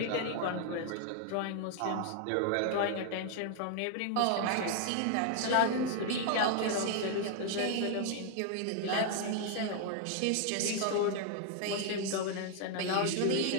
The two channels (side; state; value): both; different; correlation 0.00